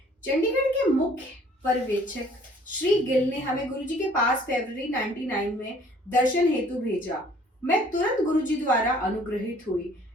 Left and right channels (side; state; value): both; normal; correlation 0.56